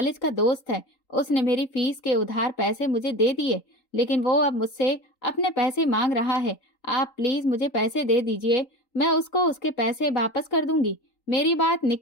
का दोस्त है, उसने मेरी फीस के उधार पैसे मुझे दे दिए, लेकिन वो अब मुझसे अपने पैसे मांग रहा है। आप प्लीज मुझे पैसे दे दीजिए, मैं उसको उसके पैसे वापस कर दूंगी। मेरी बात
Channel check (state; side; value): late; right; 3.8 ms